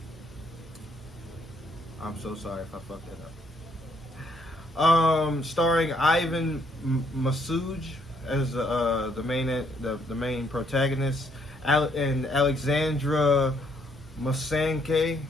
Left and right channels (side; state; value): both; normal; correlation 0.70